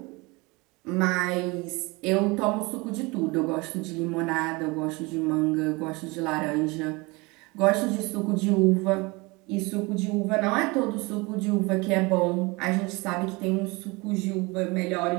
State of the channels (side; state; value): left; quieter; 25.5 dB